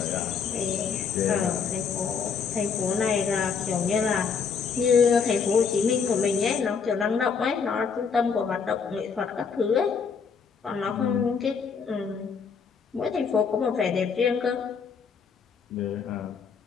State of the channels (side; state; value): right; quieter; 5.9 dB